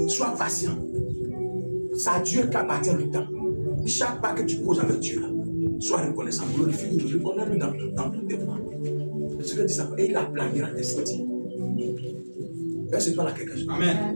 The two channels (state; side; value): inverted; both; correlation -1.00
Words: Sois patient. C'est à Dieu qu'appartient le temps. Chaque pas que tu poses avec Dieu, sois reconnaissant, glorifie-le, honneur-le dans tous tes voies. C'est ce que dit ça. Et il aplanira tes sentiers. Est-ce que tu parles à quelqu'un? Amen.